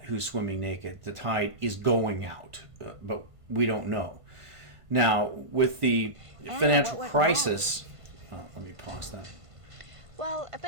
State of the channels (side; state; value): left; late; 1.5 ms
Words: who's swimming naked. The tide is going out, but we don't know. Now, with the financial crisis, let me pause that. Well, a